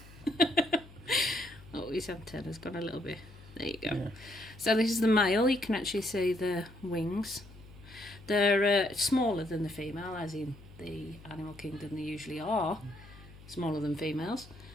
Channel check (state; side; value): noise; left; hum, 20 dB below the sound